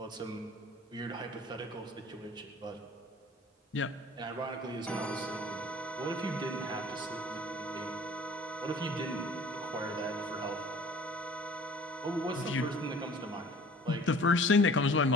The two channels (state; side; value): normal; both; correlation 0.49